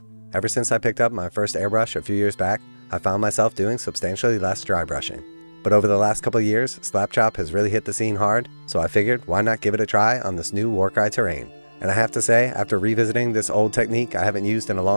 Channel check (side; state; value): both; inverted; correlation -1.00